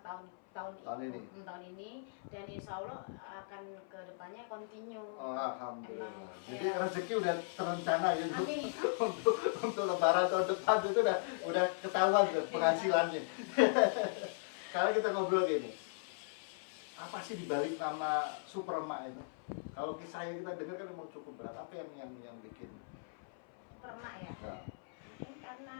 tahun ini, dan insya Allah akan ke depannya continue. Oh, alhamdulillah. Jadi Ya. rezeki udah terencana gitu. Amin. untuk lebaran tahun depan itu udah ketahuan tuh penghasilannya. Sekarang kita ngobrol gini. Apa sih dibalik nama Superma itu? Kalau kisahnya kita dengar kan memang cukup berat. Apa yang bikin? Superma ya. Nah. Mungkin karena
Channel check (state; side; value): silent; right; 53 dB below the other